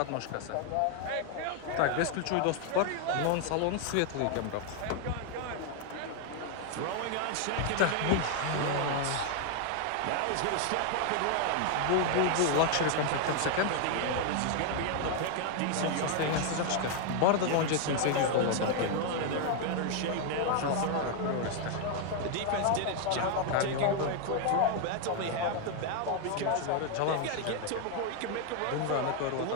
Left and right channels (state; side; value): different; both; correlation 0.00